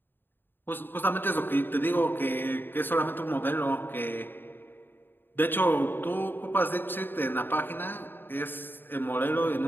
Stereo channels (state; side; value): late; right; 0.096 ms